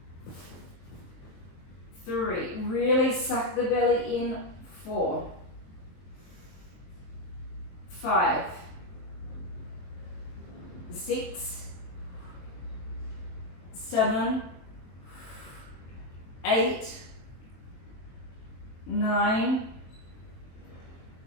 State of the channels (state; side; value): late; right; 23 ms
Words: 3. Really suck the belly in. 4, 5, 6, 7, 8, 9,